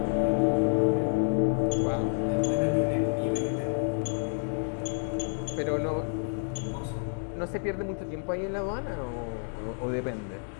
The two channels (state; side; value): silent; right; digital silence